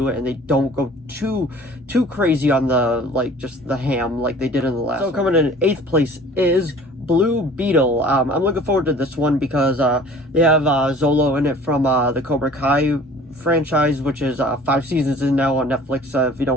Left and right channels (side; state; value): both; normal; correlation 0.48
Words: it and they don't go too crazy on the, like, just the ham like they did in the last one. So coming in 8th place is Blue Beetle. I'm looking forward to this one because they have Zolo in it from the Cobra Kai franchise, which is 5 seasons in now on Netflix.